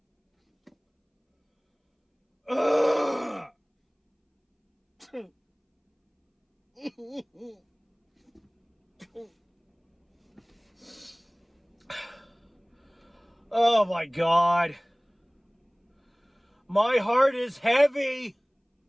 Ugh. Oh my God. My heart is heavy.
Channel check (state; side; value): identical; both; correlation 1.00